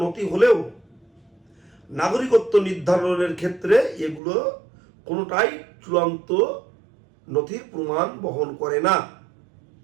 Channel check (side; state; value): left; drops out; at 4.2 s